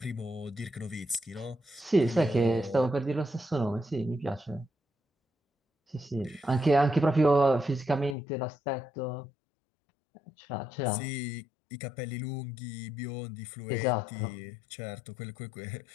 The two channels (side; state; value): right; drops out; at 8.2 s